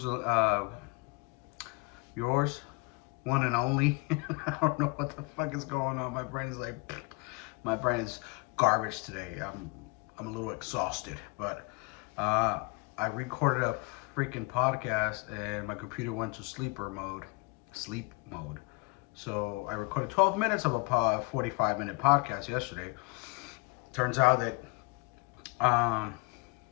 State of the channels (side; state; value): right; quieter; 27.5 dB